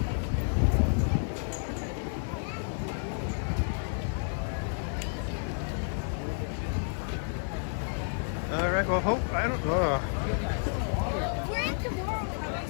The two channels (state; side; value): silent; right; 57 dB below the other